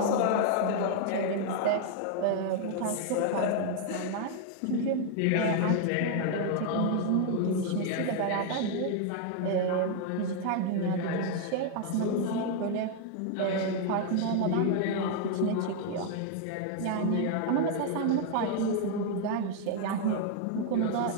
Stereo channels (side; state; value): both; different; correlation 0.00